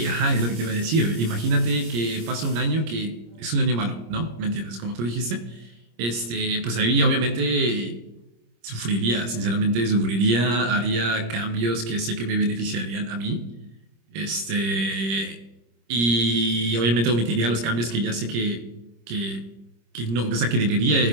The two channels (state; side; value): late; left; 26 ms